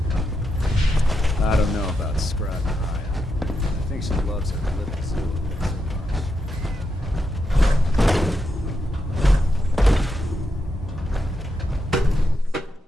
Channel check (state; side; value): normal; both; correlation 0.84